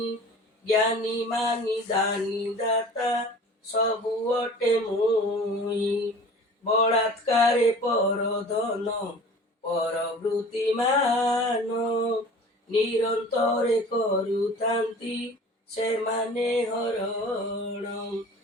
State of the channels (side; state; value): both; normal; correlation 0.43